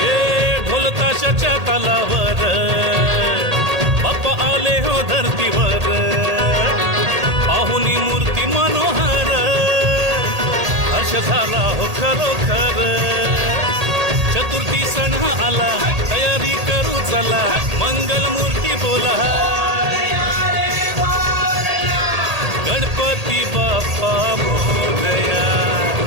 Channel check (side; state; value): left; late; 1.8 ms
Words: ताशाच्या तालावर बाप्पा आले हो धरतीवर, पाहुनी मूर्ती मनोहर, हर्ष झाला हो खरोखर। चतुर्थी सण आला, तयारी करू चला, मंगल मूर्ती बोला, गणपती बाप्पा मोरया,